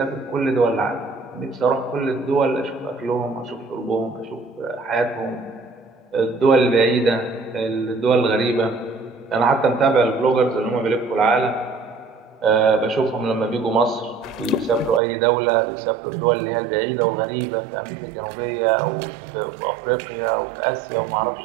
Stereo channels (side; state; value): left; drops out; at 15.0 s